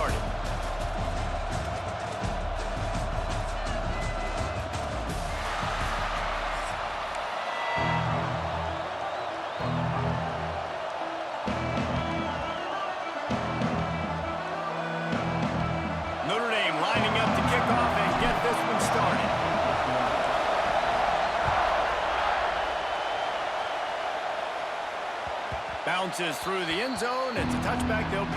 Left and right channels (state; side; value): identical; both; correlation 1.00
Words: Notre Dame lining up to kick off and get this one started. Bounces through the end zone. It's a touchback. They'll